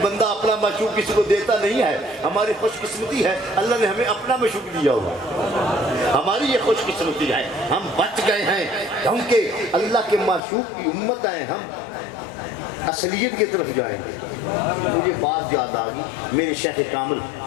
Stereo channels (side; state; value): right; drops out; at 10.4 s